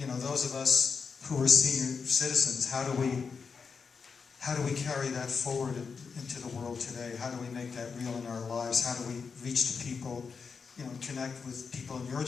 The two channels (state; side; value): quieter; right; 5.5 dB